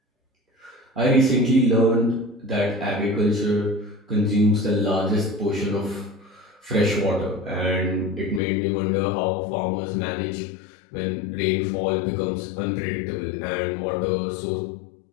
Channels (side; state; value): right; drops out; at 8.4 s